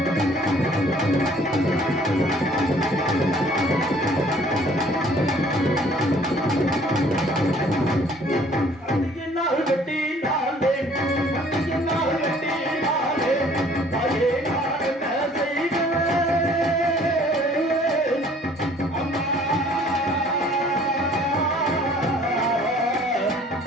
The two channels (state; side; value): normal; both; correlation 0.56